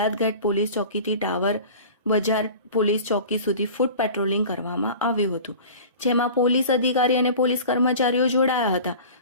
ગેટ પોલીસ ચોકીથી ટાવર બજાર પોલીસ ચોકી સુધી ફૂટ પેટ્રોલિંગ કરવામાં આવ્યું હતું, જેમાં પોલીસ અધિકારી અને પોલીસ કર્મચારીઓ જોડાયા હતા.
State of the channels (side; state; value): both; inverted; correlation -0.39